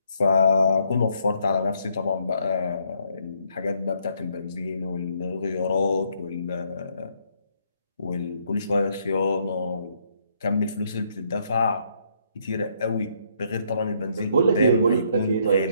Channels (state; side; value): inverted; both; correlation -0.71